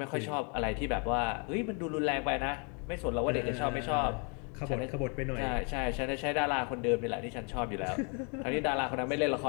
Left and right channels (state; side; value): quieter; right; 36.7 dB